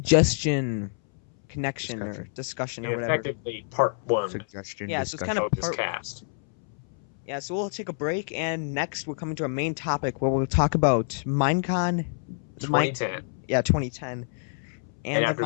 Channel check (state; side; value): silent; right; 60 dB below the other